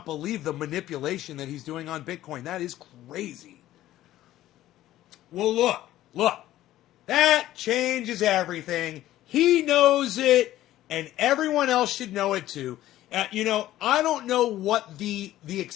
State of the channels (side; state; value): right; quieter; 14.2 dB